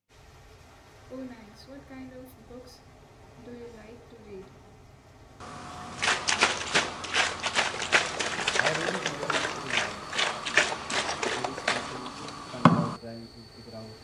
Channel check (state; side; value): identical; both; correlation 1.00